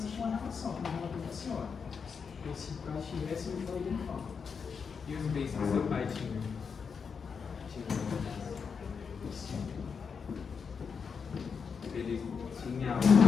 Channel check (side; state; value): right; quieter; 5.9 dB